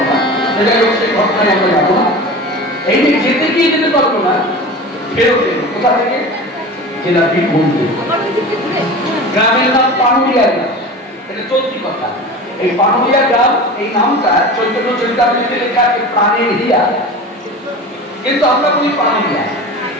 যাই হোক, সেই ঘটনায় আমরা যাবো না। এই যে যেতে গিয়ে যেতে পারবো না, ফেরত এলো কোথা থেকে? জেলা বীরভূম। গ্রামের নাম পানুরিয়া গ্রাম, এটা চলতি কথা। এই পানুরিয়া গ্রাম, এই নামটা চৈতন্য চরিতামৃতে লেখা আছে প্রাণের হিয়া, কিন্তু আমরা বলি পানুরিয়া।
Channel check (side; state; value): both; normal; correlation 0.33